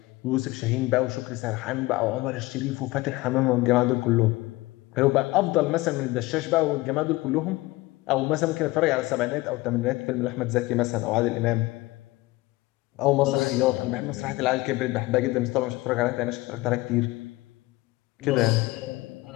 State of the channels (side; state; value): right; quieter; 20.4 dB